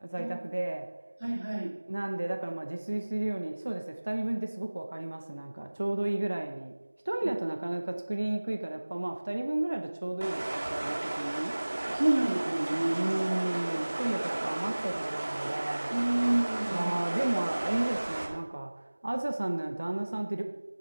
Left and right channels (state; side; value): inverted; both; correlation -1.00